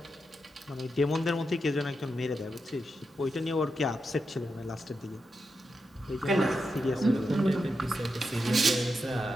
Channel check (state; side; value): normal; both; correlation 0.87